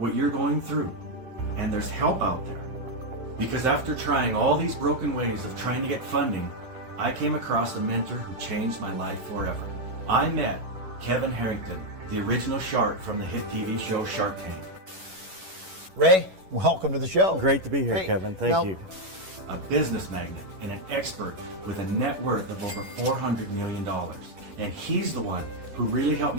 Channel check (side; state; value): left; late; 11 ms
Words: you're going through, and there's help out there. Because after trying all these broken ways of trying to get funding, I came across a mentor who changed my life forever. I met Kevin Harrington, the original shark from the hit TV show Shark Tank. Ray, welcome to the show. Great to be here, Kevin. Thank you. A business magnate and an expert with a net worth of over $400 million. And he's the one who really helped